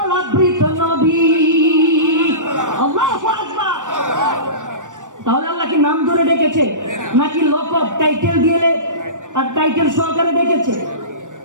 আবৃত নবী। আল্লাহু আকবার। তাহলে আল্লাহ কি নাম ধরে ডেকেছে নাকি লকব টাইটেল দিয়ে আর টাইটেল সহকারে ডেকেছে?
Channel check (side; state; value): left; late; 0.86 ms